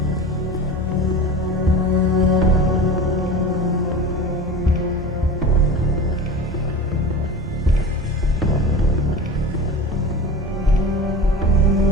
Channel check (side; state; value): both; normal; correlation 0.32